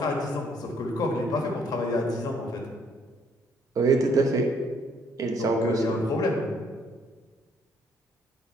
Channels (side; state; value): both; normal; correlation 0.66